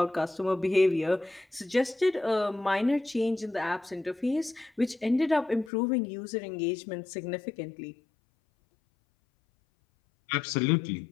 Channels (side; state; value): right; drops out; at 5.7 s